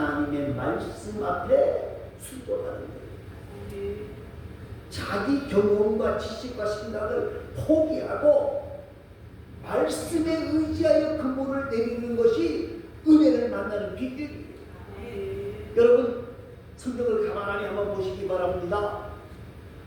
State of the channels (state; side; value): identical; both; correlation 1.00